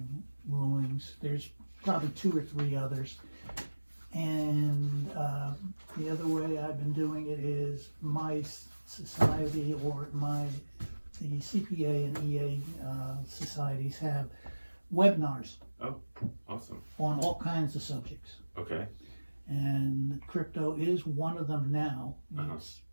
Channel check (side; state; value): both; inverted; correlation -1.00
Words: rulings. There's probably 2 or 3 others. And the other way I've been doing it is my society or the CPA and EA societies have webinars Oh, awesome. on all kinds of subjects. Okay. And crypto is one of them now. Uh-huh. It's